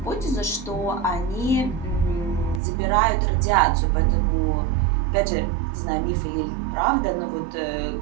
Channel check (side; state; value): left; drops out; at 2.6 s